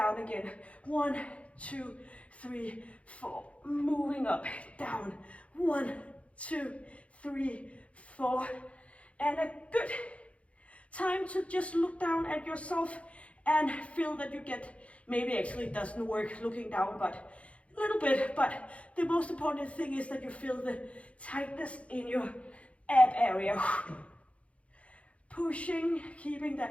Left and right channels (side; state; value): right; late; 0.063 ms